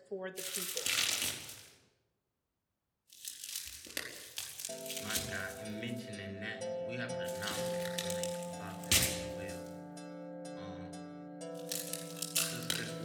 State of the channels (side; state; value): both; identical; correlation 1.00